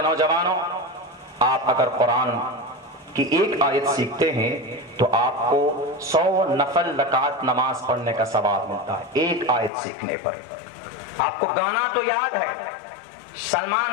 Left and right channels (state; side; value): drops out; right; at 9.7 s